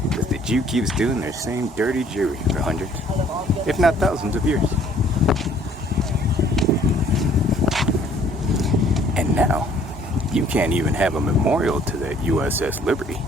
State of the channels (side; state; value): both; normal; correlation 0.59